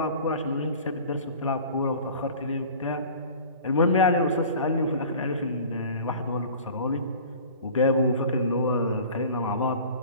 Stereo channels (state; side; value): inverted; both; correlation -0.43